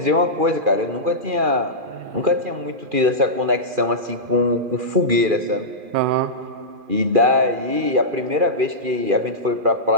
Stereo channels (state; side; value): late; left; 2.4 ms